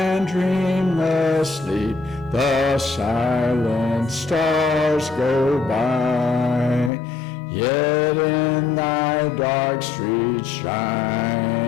dreamless sleep, the silent stars go by. Yet in thy dark streets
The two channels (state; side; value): drops out; right; at 6.9 s